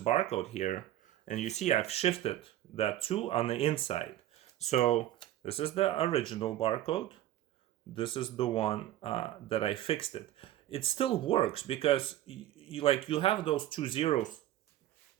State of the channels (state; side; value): quieter; left; 13.4 dB